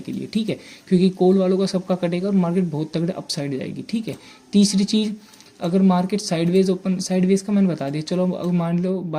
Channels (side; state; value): both; identical; correlation 1.00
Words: के लिए। ठीक है, क्योंकि कॉल वालों का सबका कटेगा और मार्केट बहुत तगड़े अपसाइड जाएगी। ठीक है, तीसरी चीज़, अगर मार्केट साइडवेज ओपन, साइडवेज का मैंने बता दिया, चलो अगर मान लो